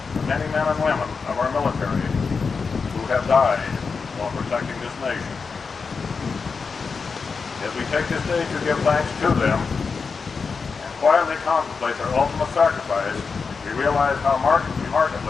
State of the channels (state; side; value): quieter; right; 5.1 dB